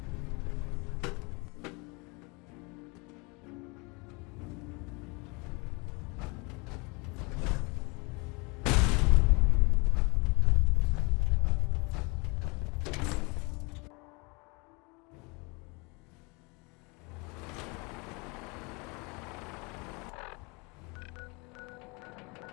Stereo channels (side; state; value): right; quieter; 28.8 dB